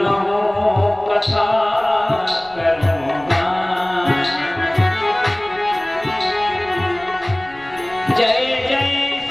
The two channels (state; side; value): noise; left; rumble, 25 dB below the sound